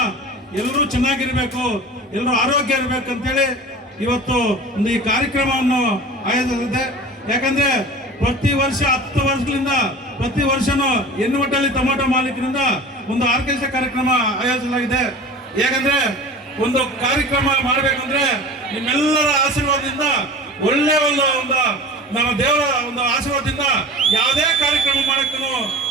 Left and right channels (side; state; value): both; normal; correlation 0.38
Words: ಎಲ್ಲರೂ ಚೆನ್ನಾಗಿರ್ಬೇಕು, ಎಲ್ಲರೂ ಆರೋಗ್ಯ ಇರಬೇಕು ಅಂತೇಳಿ ಇವತ್ತು ಒಂದು ಈ ಕಾರ್ಯಕ್ರಮವನ್ನು ಆಯೋಜಿಸಿದೆ. ಯಾಕಂದ್ರೆ ಪ್ರತಿ ವರ್ಷ 10 ವರ್ಷಗಳಿಂದ ಪ್ರತಿ ವರ್ಷನೂ ಎನ್ನುವಟ್ಟಲ್ಲಿ ಟೊಮಾಟೋ ಮಾಲೀಕರಿಂದ ಒಂದು ಆರ್ಕೆಸ್ಟ್ರಾ ಕಾರ್ಯಕ್ರಮ ಆಯೋಜಿಸಲಾಗಿದೆ. ಯಾಕಂದ್ರೆ ಒಂದು ಕಾರ್ಯಕ್ರಮ ಮಾಡಬೇಕಂದ್ರೆ ನಿಮ್ಮೆಲ್ಲರ ಆಶೀರ್ವಾದದಿಂದ, ಒಳ್ಳೆ ಒಂದು ನಮ್ಮ ದೇವರ ಒಂದು ಆಶೀರ್ವಾದದಿಂದ ಯಾವುದೇ ಕಾರ್ಯಕ್ರಮ ಮಾಡಕ್ಕೂ